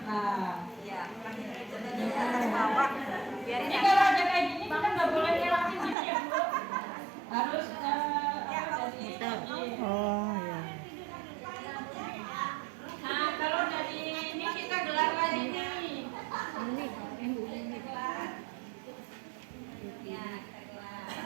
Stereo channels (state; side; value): drops out; left; at 6.0 s